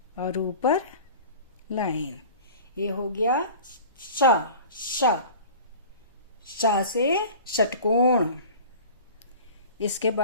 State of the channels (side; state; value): both; inverted; correlation -0.40